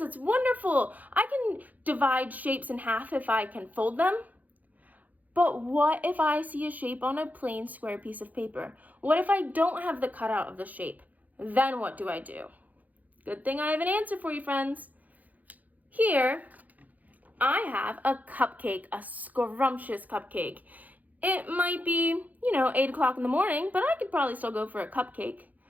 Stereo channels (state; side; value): late; left; 0.080 ms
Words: wonderful. I can divide shapes in half if I can fold them. But what if I see a shape on a plain square piece of paper? What if I don't have the cutout of the shape? Then what do I do? Good thing I have an answer for you, friends. Here, I have a cupcake, a scrumptious cupcake. It might be, 8 o'clock in the morning, but I could probably still go for a cupcake.